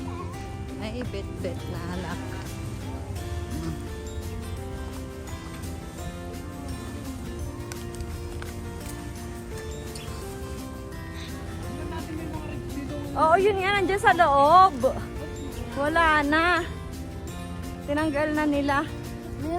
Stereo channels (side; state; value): both; identical; correlation 1.00